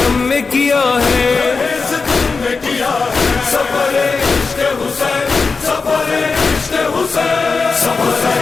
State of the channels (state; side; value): quieter; right; 4.5 dB